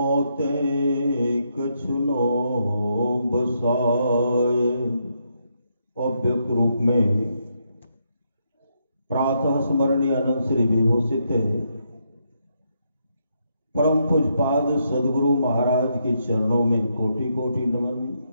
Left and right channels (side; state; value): both; inverted; correlation -0.78